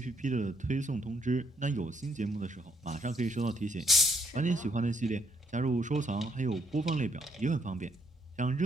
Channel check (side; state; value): both; normal; correlation 0.71